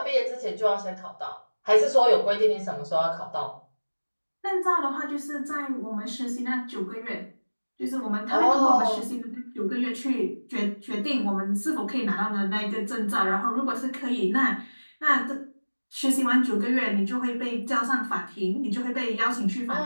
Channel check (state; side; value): inverted; both; correlation -1.00